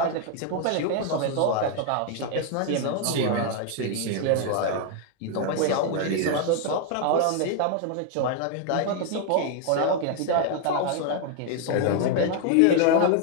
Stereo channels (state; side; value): different; both; correlation 0.00